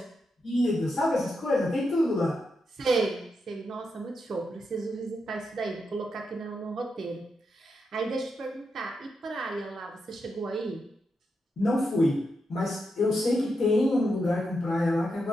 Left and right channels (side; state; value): both; normal; correlation 0.85